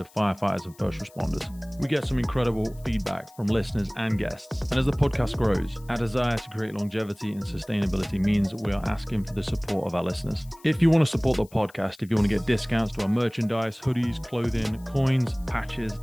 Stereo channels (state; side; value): noise; left; hiss, 26 dB below the sound